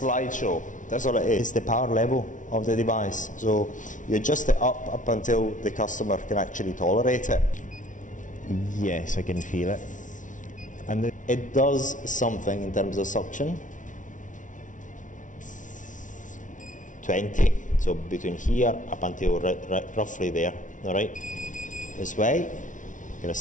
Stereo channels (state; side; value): late; right; 0.37 ms